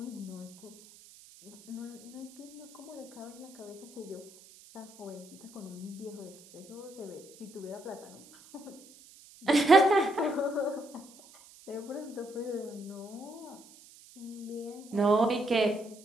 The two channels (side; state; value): right; noise; hiss, 21 dB below the sound